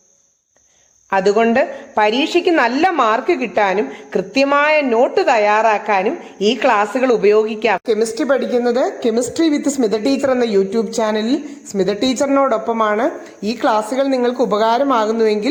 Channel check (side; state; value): both; identical; correlation 1.00